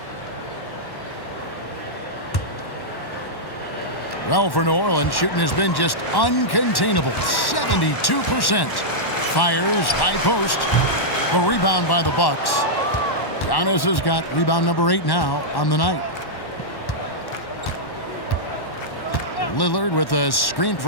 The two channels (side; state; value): right; late; 1.1 ms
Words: Well, for New Orleans, shooting has been just uncontainable. 72%. Fires, high post. The rebound by the Bucks. Giannis has got rebound number 8 now on the night. Lillard with a screen